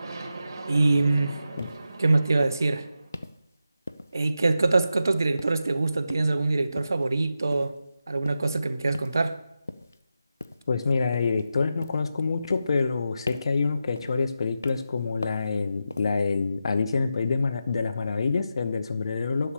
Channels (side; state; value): both; inverted; correlation -0.89